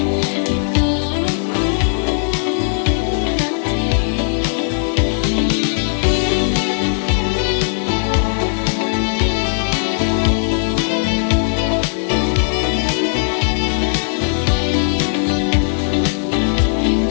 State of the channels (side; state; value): right; silent; digital silence